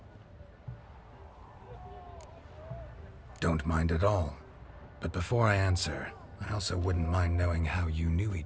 Don't mind at all. But before I answer, I also wouldn't mind knowing how you knew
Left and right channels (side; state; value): both; identical; correlation 1.00